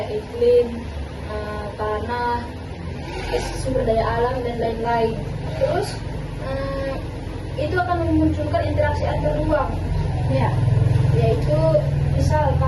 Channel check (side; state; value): both; identical; correlation 1.00